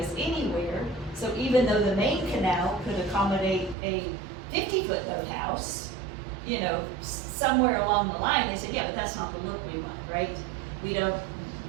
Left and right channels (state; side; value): drops out; left; at 3.8 s